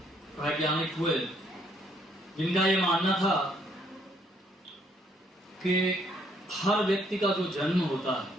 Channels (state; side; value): normal; both; correlation 0.68